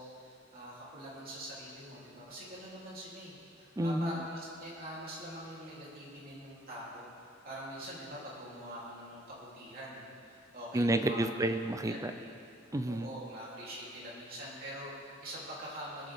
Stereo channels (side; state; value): both; normal; correlation 0.61